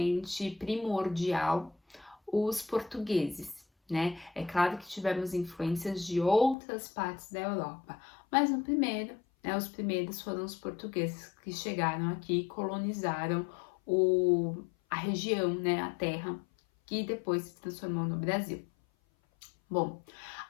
primordial, os portugueses, né? É claro que tivemos influências de outras partes da Europa, mas no primeiro, né, os primeiros foram os portugueses que chegaram aqui e colonizaram a região, né, a terra, que depois se transformou no Brasil. Bom,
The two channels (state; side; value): drops out; right; at 6.6 s